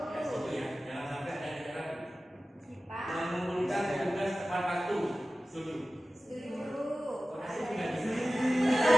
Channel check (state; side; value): normal; both; correlation 0.95